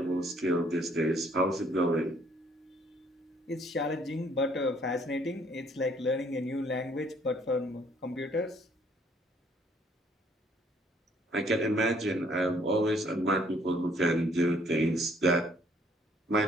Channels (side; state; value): both; normal; correlation 0.63